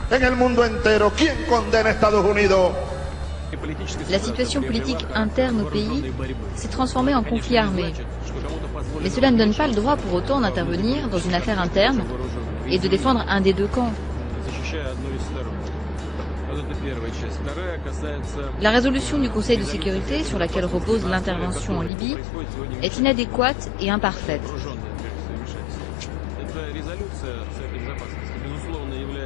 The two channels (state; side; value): drops out; right; at 21.9 s